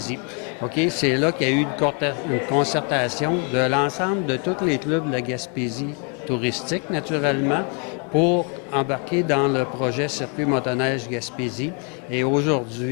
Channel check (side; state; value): right; quieter; 37.2 dB